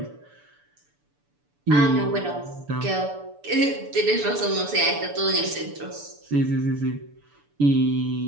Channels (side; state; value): left; late; 6.9 ms